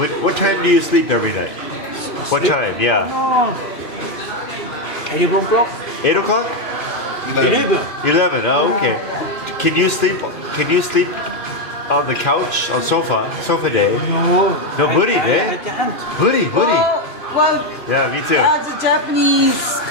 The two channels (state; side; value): late; right; 2.7 ms